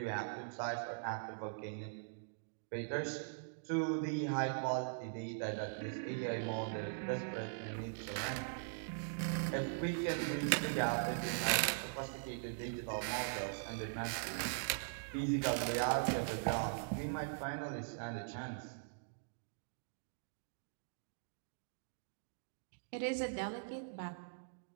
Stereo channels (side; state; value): left; silent; digital silence